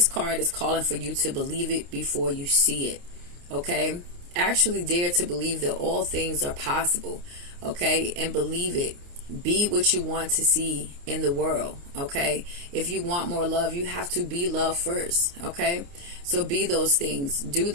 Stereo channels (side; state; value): left; late; 29 ms